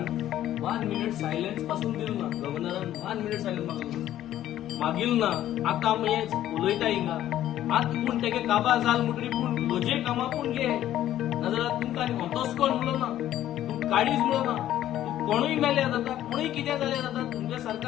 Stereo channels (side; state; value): right; quieter; 12.6 dB